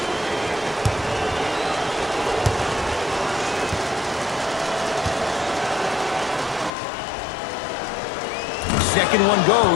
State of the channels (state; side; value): drops out; right; at 6.7 s